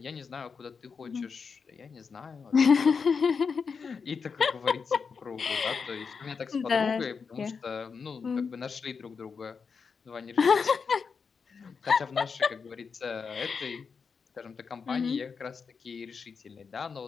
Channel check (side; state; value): right; quieter; 5.6 dB